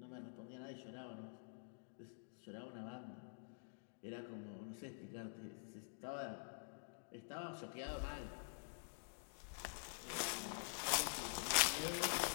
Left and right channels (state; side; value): silent; right; digital silence